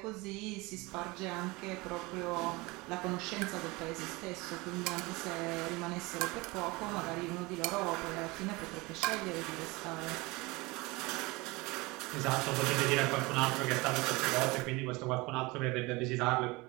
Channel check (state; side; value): quieter; left; 23.7 dB